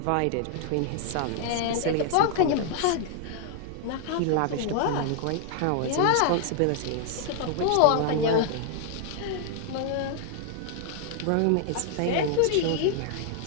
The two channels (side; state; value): both; different; correlation 0.00